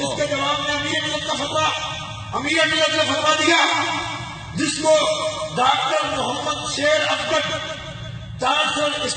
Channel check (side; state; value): both; identical; correlation 1.00